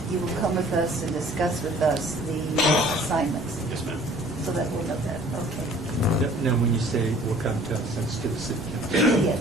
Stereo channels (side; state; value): right; noise; rumble, 21 dB below the sound